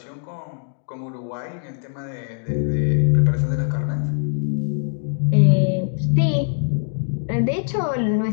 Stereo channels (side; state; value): right; silent; digital silence